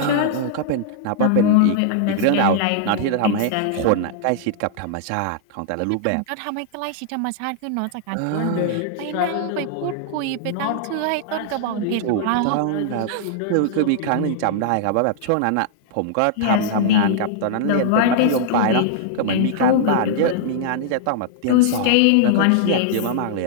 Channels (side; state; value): both; different; correlation -0.01